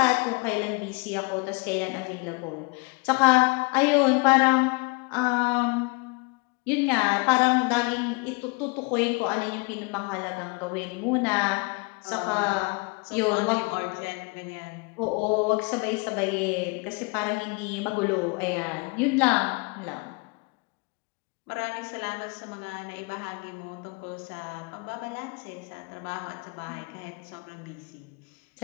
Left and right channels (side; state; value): right; quieter; 29.8 dB